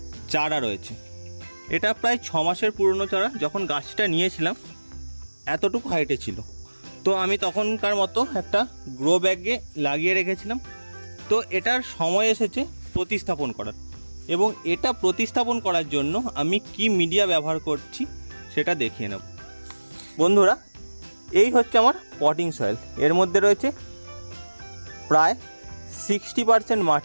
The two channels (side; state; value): both; inverted; correlation -1.00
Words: চারা রয়েছে। এটা প্রায় 6 মাসের পুরনো চারা। যখন গাছটা নিয়েছিলাম এতটুকু হাইটে ছিল, তো আমি তখনকার মতো একটা গ্রো ব্যাগে লাগিয়ে রেখেছিলাম। তো এটার সময় এসেছে প্রতিস্থাপন করার, এবং এটা প্রতিস্থাপন করার জন্য আমি কি মিডিয়া ব্যবহার করছি সেটা দেখিয়ে নেব। বন্ধুরা, এই হচ্ছে আমার পটিং সয়েল। এর মধ্যে রয়েছে প্রায় 60%